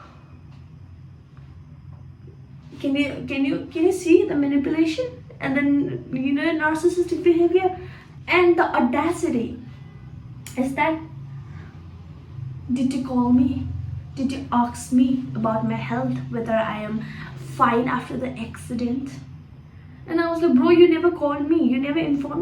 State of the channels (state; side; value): identical; both; correlation 1.00